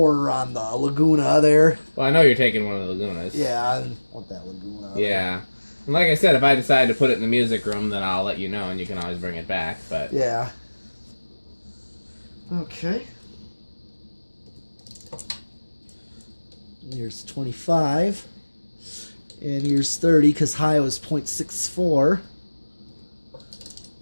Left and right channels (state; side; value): inverted; both; correlation -1.00